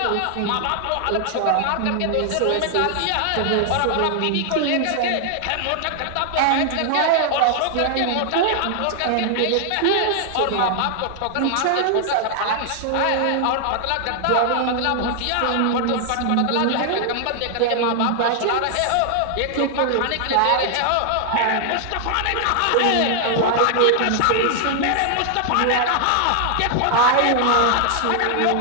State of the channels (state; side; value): different; both; correlation 0.00